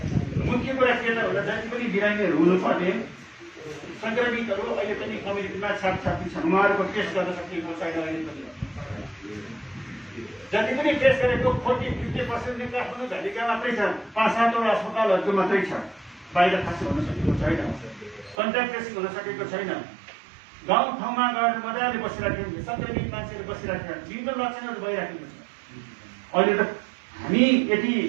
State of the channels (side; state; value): left; drops out; at 18.4 s